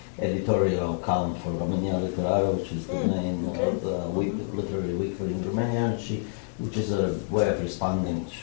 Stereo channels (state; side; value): silent; right; digital silence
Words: editorial column for Romania Literară, which is the main literary weekly in Romania, and which is a way of responding